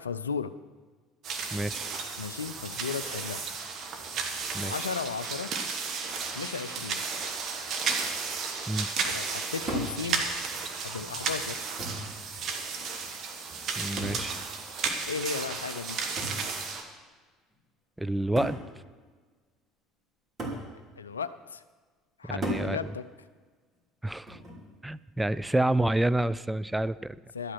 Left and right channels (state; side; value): normal; both; correlation 0.52